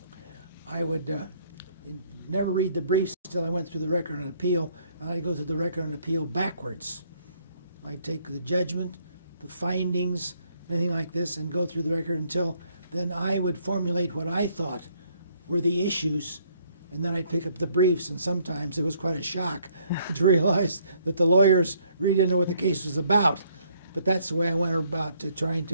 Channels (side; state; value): both; inverted; correlation -0.65